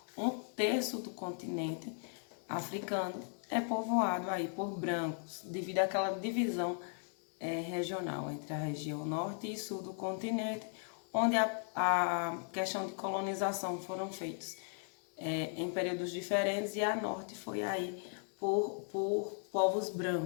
um terço do continente africano é povoado aí por brancos, devido àquela divisão regional entre a região norte e sul do continente, onde a questão de colonização foram feitos em períodos diferentes e a norte foi aí por povos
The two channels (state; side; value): silent; right; 53 dB below the other